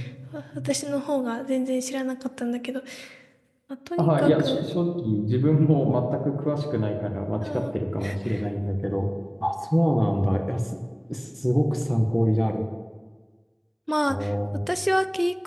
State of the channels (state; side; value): identical; both; correlation 1.00